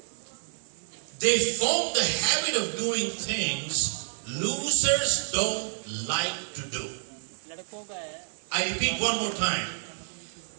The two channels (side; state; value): left; silent; 59 dB below the other